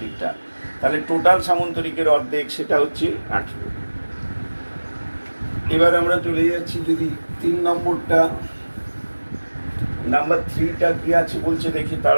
তাহলে টোটাল সামন্তরিকের অর্ধেক সেটা হচ্ছে 18। এবার আমরা চলে যাচ্ছি যদি 3 নম্বরটা, নাম্বার 3টা কি আছে বলছে দেখি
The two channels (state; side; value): inverted; both; correlation -1.00